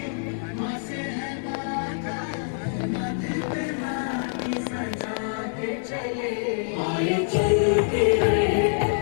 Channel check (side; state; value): right; silent; digital silence